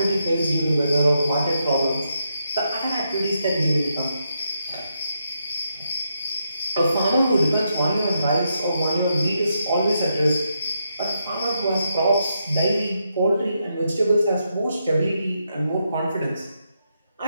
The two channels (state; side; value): inverted; both; correlation -0.81